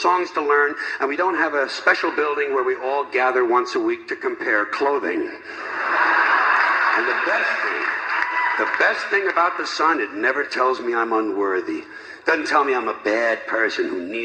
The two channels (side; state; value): both; identical; correlation 1.00